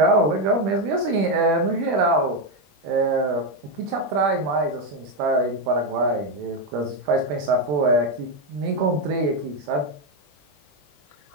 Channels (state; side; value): late; left; 21 ms